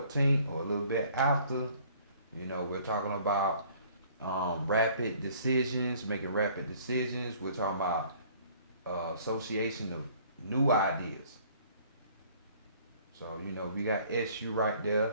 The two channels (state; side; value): inverted; both; correlation -0.56